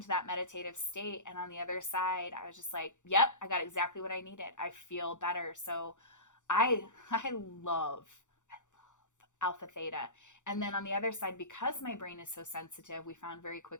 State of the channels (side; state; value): right; late; 0.85 ms